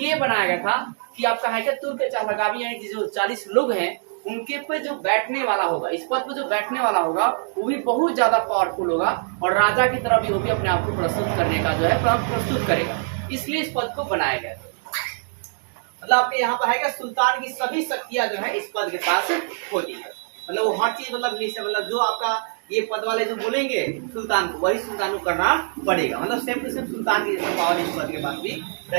बनाया गया था कि आपका है क्या तुर्क के चहलगामी यानी कि जो 40 लोग हैं उनके पे जो बैठने वाला होगा, इस पद पे जो बैठने वाला होगा वो भी बहुत ज्यादा पावरफुल होगा, और राजा की तरह भी वो भी अपने आप को प्रस्तुत करने का जो है प्रस्तुत करेगा। इसलिए इस पद को बनाया गया था। मतलब आपके यहाँ पर है क्या सुल्तान की सभी शक्तियां जो है इस पद के पास होती है। मतलब वो हर चीज मतलब जो आपका ये पद वाले जो बोलेंगे सुल्तान को, वही सुल्तान को करना पड़ेगा। मतलब सेम टू सेम सुल्तान की जैसे पावर इस पद के पास भी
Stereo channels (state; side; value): silent; left; digital silence